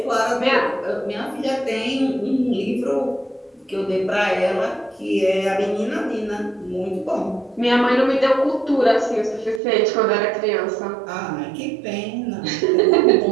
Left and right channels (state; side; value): drops out; left; at 9.6 s